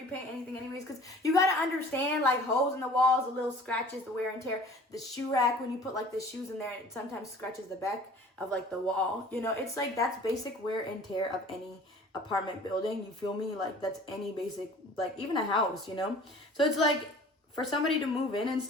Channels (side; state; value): both; normal; correlation 0.47